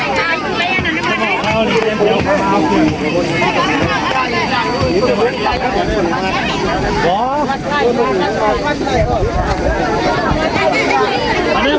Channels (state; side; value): identical; both; correlation 1.00